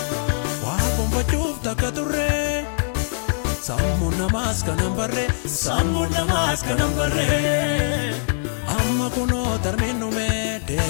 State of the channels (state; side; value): silent; right; digital silence